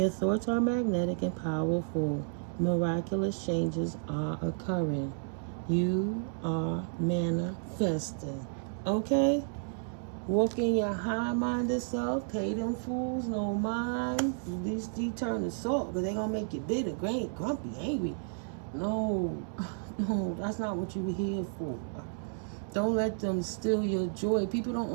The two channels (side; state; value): left; silent; digital silence